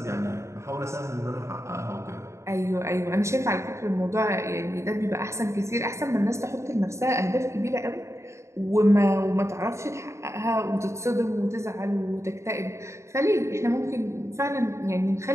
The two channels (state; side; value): late; left; 0.14 ms